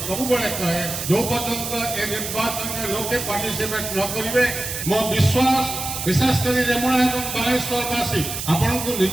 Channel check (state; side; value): noise; right; hiss, 5 dB below the sound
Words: सब बड़े कहे जो पर्यंत ए निर्वाचन में लोके पार्टिसिपेट न करिवे मो विश्वास विशेषकर रेमुणा एवं बालेश्वरवासी आपण को